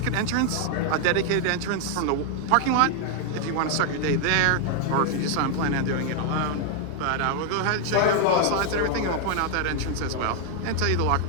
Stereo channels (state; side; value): different; both; correlation 0.00